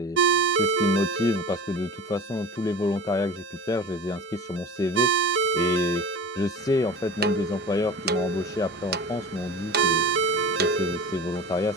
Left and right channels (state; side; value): normal; both; correlation 0.36